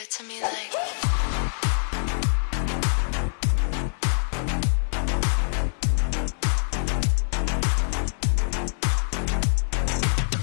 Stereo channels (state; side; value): silent; right; 59 dB below the other